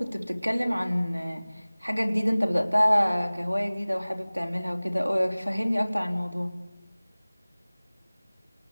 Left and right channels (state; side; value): inverted; both; correlation -0.99